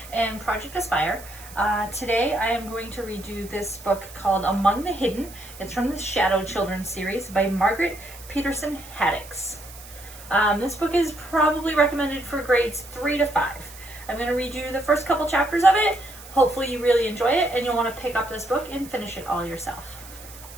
and Project Aspire. Today I am going to read you this book called Among the Hidden. It's from the Shadow Children series by Margaret Peterson Haddix. This book is probably recommended for grades 3 to 5. I'm going to read you the first couple chapters of it. Hopefully you really enjoy it and you'll want to pick up this book and finish it all yourself.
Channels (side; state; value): right; noise; hiss, 18 dB below the sound